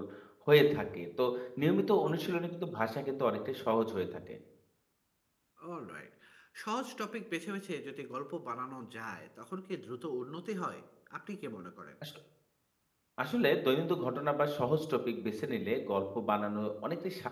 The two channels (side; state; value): both; identical; correlation 1.00